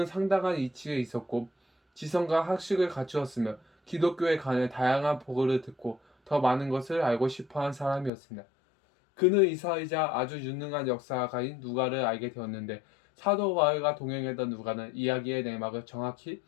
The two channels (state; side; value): drops out; right; at 8.1 s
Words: 상당한 이치에 있었고 지성과 학식을 갖추었으며 기독교에 관해 다양한 보고를 듣고 더 많은 것을 알고 싶어한 사람이었습니다. 그는 이사이자 아주 유능한 역사가인 누가를 알게 되었는데 사도 바울과 동행했던 누가는 이야기의 내막을 정확히